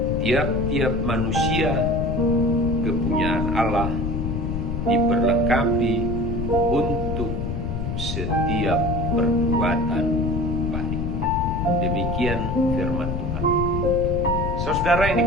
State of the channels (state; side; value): noise; left; rumble, 3 dB below the sound